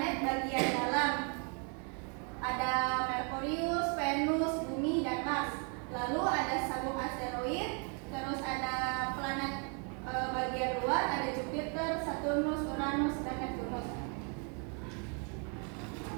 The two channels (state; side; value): quieter; left; 38.2 dB